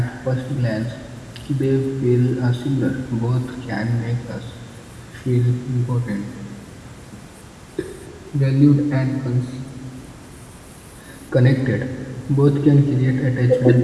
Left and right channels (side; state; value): both; identical; correlation 1.00